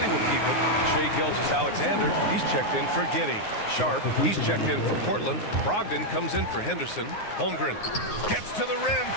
will keep it. Shai Gilgeous-Alexander, he's checked in for Giddey. Sharp, he's checked in for Portland. Brogdon comes in for Henderson. Holmgren gets to the rim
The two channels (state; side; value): late; right; 9.6 ms